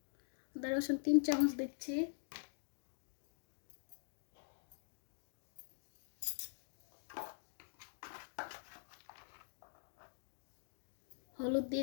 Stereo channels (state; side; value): silent; right; digital silence